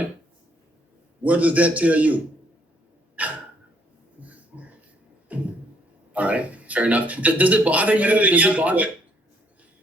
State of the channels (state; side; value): normal; both; correlation 0.67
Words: What does that tell you? All right, fair enough. Does it bother you? Does it bother?